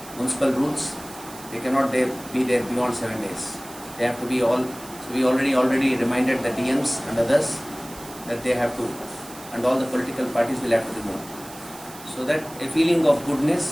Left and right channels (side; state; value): right; noise; hiss, 17 dB below the sound